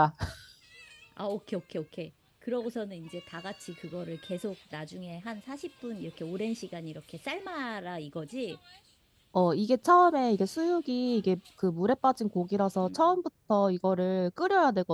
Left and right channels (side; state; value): both; identical; correlation 1.00